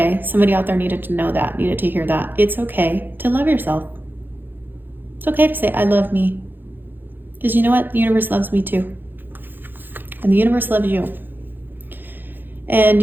Somebody out there needed to know that, needed to hear that. It's okay to love yourself. It's okay to say, I love me. Because you know what? The universe loves me too. And the universe loves you. And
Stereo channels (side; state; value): left; late; 0.093 ms